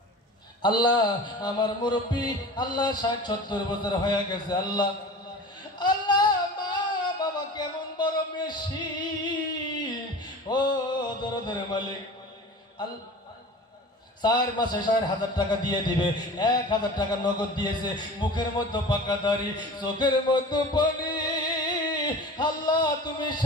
আল্লাহ আমার মুরব্বী আল্লাহ 60-70 বছর হয়ে গেছে, আল্লাহ আল্লাহ মা বাবা কেমন বড় মেশিন, ও দরদের মালিক। আল্লাহ 4 মাসে 4,000 টাকা দিয়ে দিবে, 1,000 টাকা নগদ দিয়েছে, মুখের মধ্যে পাকা দাড়ি, চোখের মধ্যে পানি। আল্লাহ তুমি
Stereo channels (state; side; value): normal; both; correlation 0.37